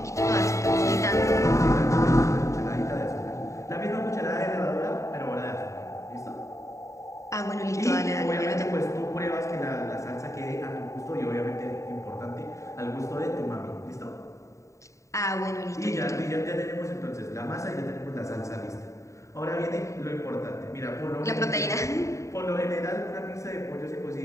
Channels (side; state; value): right; late; 0.15 ms